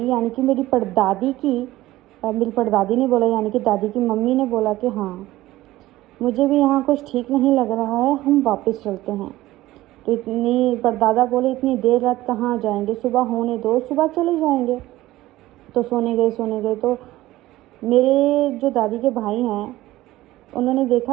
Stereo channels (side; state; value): left; quieter; 16.6 dB